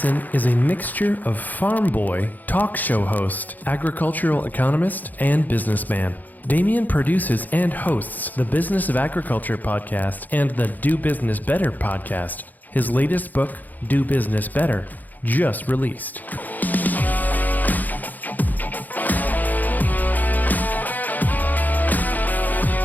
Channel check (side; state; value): right; late; 0.083 ms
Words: is a mixture of farm boy, talk show host, agricultural economist, and businessman. Damien produces and hosts the Business of Agriculture podcast and the Do Business Better podcast. His latest book, Do Business Better, just released.